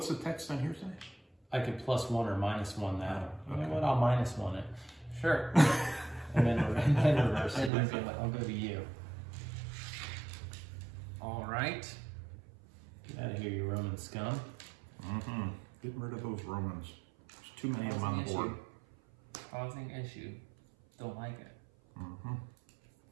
the text on here say? I could +1 or -1 that. Oh, You know okay. what? I'll -1 it. Sure. And then reverse it. And reveal it. I'll go to you. All right. Get out of here, you Roman scum. Mm-hmm. Getting rid of those Romans. There's too many of them on the board. Causing issue. Don't like it. Mm-hmm.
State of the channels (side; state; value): left; drops out; at 7.7 s